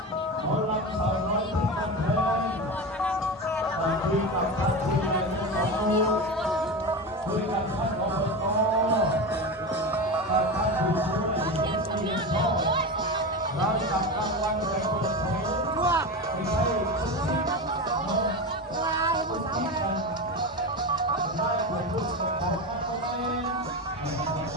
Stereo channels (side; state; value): both; normal; correlation 0.22